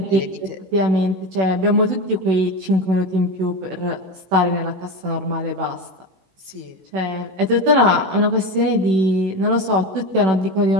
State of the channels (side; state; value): left; late; 16 ms